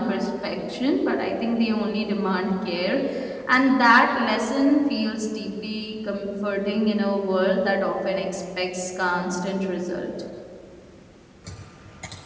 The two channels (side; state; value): both; identical; correlation 1.00